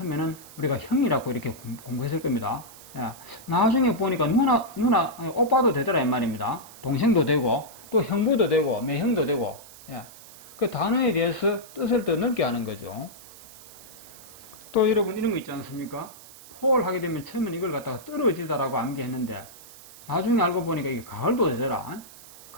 우리가 형이라고 이렇게 공부했을 겁니다. 야, 나중에 보니까 누나 오빠도 되더라 이 말입니다. 동생도 되고 또 형부도 되고 매형도 되고. 야, 그 단어에 대해서 뜻을 더 넓게 하는 거죠. 또 여러분 이런 거 있지 않습니까? 포를 하게 되면 처음에는 이걸 갖다가 떨어지다라고 암기했는데 나중에 알고 보니까 이게 가을도 되더라.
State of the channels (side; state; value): right; noise; hiss, 19 dB below the sound